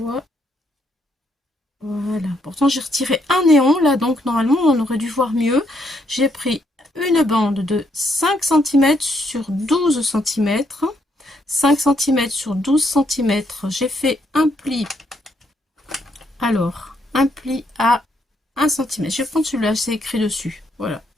Voilà. Pourtant, j'ai retiré un néon, là, donc normalement, on aurait dû voir mieux. J'ai pris une bande de 5 cm sur 12 cm. 5 cm sur 12 cm. J'ai fait un pli. Alors, un pli à 1 cm. Je vais prendre celui-là, c'est écrit dessus. Voilà.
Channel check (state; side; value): normal; both; correlation 0.74